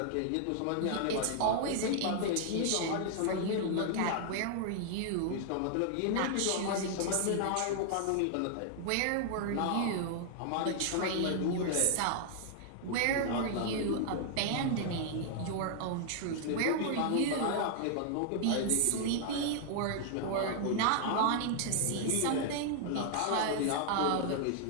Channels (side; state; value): both; different; correlation 0.00